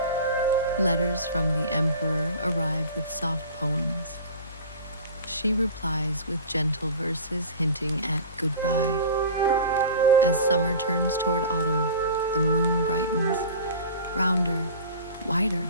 Letters from the emperor arrive with soft poems. She replies with gentle verses hinting at goodbye. As summer turns toward autumn, the moon brightens, rounder, wider,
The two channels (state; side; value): inverted; both; correlation -0.36